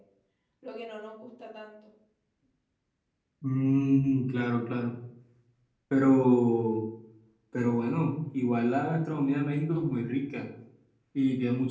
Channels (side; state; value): both; identical; correlation 1.00